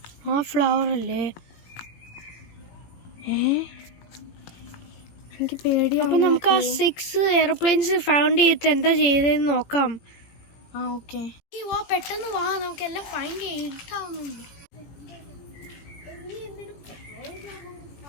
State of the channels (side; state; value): right; late; 17 ms